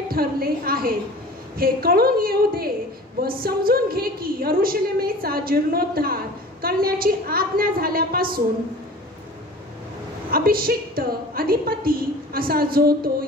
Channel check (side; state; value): both; normal; correlation 0.42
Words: ठरले आहेत. हे कळून येऊ दे व समजून घे की यरुशलेमेचा जीर्णोद्धार करण्याची आज्ञा झाल्यापासून अभिषिक्त अधिपती असा जो तो